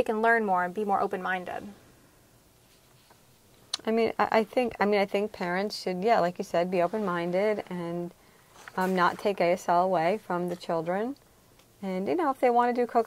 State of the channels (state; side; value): identical; both; correlation 1.00